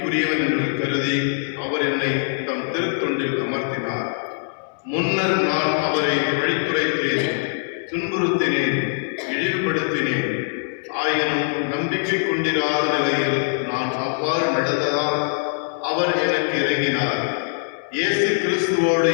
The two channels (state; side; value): silent; right; 63 dB below the other